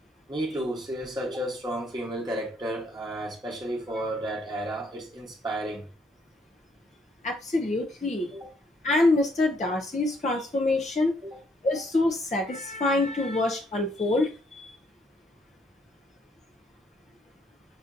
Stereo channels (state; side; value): normal; both; correlation 0.70